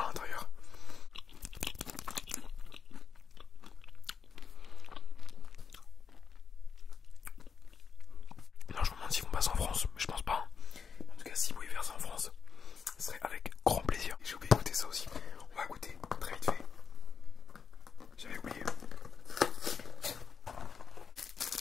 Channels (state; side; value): quieter; right; 6.2 dB